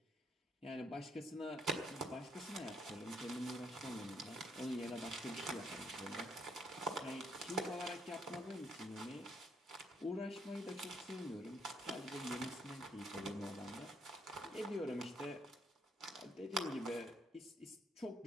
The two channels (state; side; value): normal; both; correlation 0.71